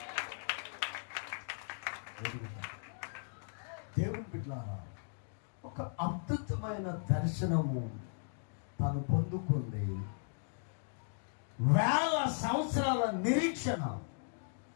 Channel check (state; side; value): silent; right; digital silence